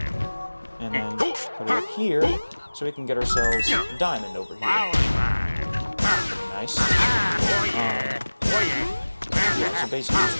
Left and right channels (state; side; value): inverted; both; correlation -1.00